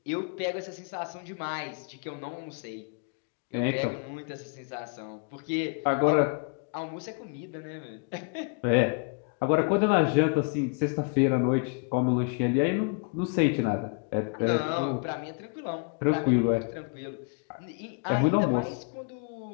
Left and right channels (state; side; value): quieter; right; 36.3 dB